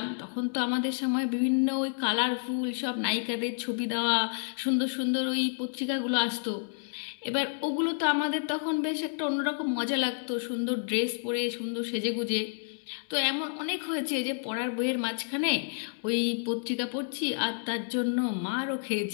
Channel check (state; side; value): silent; right; digital silence